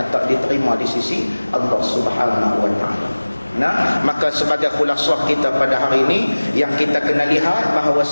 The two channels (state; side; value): inverted; both; correlation -1.00